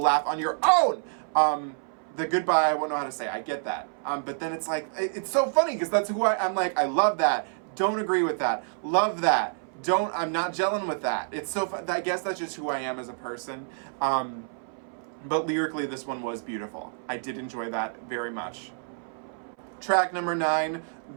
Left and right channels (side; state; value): left; silent; 59 dB below the other